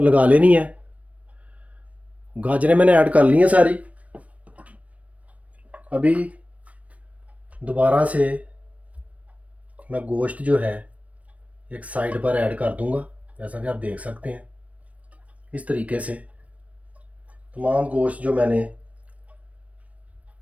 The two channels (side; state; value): left; late; 0.067 ms